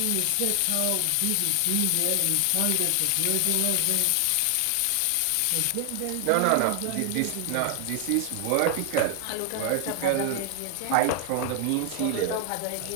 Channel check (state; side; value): different; both; correlation 0.00